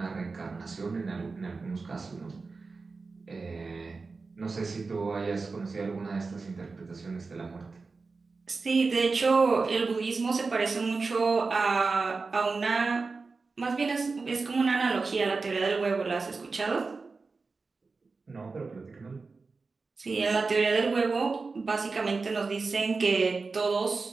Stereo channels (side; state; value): left; quieter; 4.2 dB